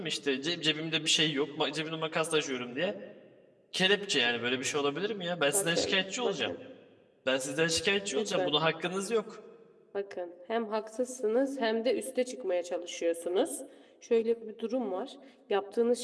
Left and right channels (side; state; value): both; identical; correlation 1.00